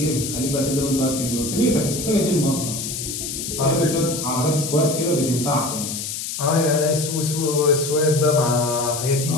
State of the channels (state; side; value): noise; left; hiss, 5 dB below the sound